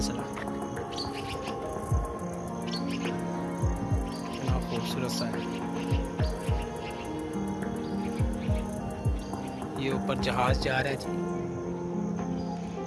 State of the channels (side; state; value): both; identical; correlation 1.00